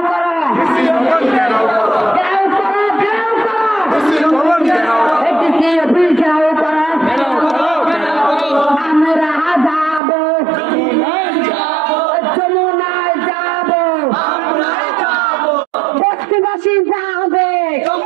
করা, ঘেরাও করো, ঘেরাও করা, এটিকে অফিস ঘেরাও করা। আমরা যাবো, যমুনায় যাবো, বস্তিবাসী যাবে,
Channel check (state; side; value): drops out; left; at 10.0 s